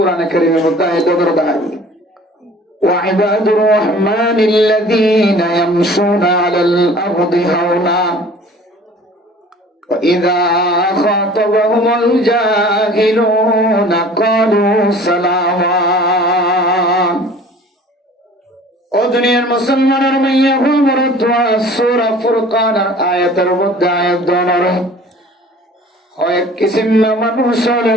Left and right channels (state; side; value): normal; both; correlation 0.47